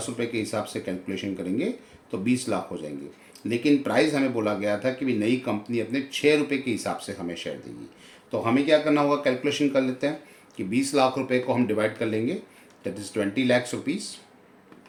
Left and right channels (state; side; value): identical; both; correlation 1.00